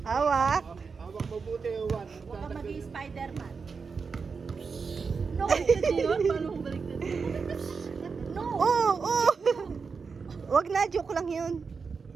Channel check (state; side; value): quieter; left; 5.2 dB